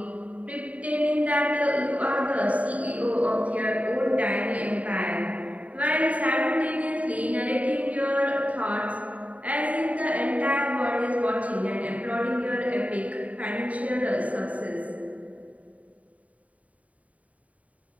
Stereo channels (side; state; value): left; late; 0.069 ms